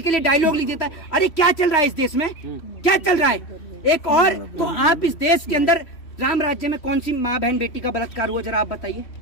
के लिए डायलॉग लिख देता है। अरे क्या चल रहा है इस देश में, क्या चल रहा है? एक और तो आप इस देश के अंदर राम राज्य में कौन सी माँ बहन बेटी का बलात्कार हुआ, जरा आप बताइए,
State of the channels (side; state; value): right; late; 3.1 ms